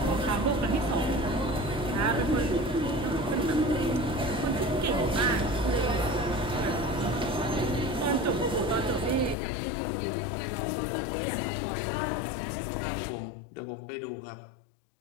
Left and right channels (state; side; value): drops out; right; at 9.3 s